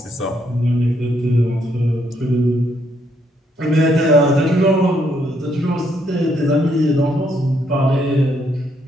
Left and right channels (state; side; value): normal; both; correlation 0.73